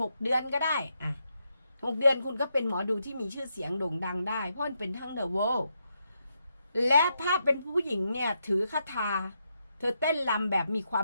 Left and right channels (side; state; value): both; inverted; correlation -0.81